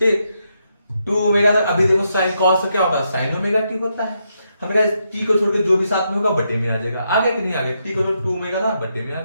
2 ओमेगा तक अभी देखो साइन कॉस क्या होता है, साइन ओमेगा t होता है, हमने कहा t को छोड़ के जो भी साथ में होगा बटे में आ जाएगा, आ गया कि नहीं आ गया, t को छोड़ 2 ओमेगा था बटे में आ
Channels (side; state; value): both; inverted; correlation -0.80